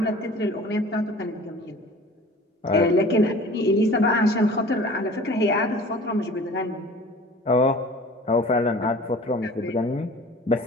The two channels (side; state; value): both; normal; correlation 0.44